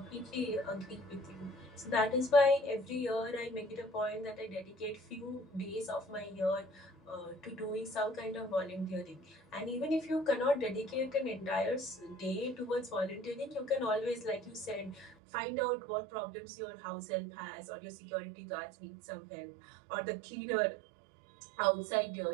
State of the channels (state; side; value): drops out; left; at 15.2 s